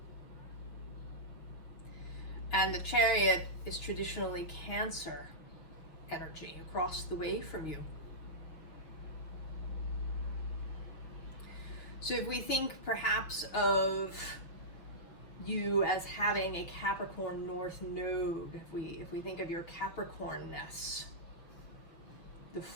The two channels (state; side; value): late; right; 6.4 ms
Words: And the Chariot is traditionally Cancer energy across the way from you. So if we think perhaps of you as having a Capricorn North Node, if we think of your Capricornness, the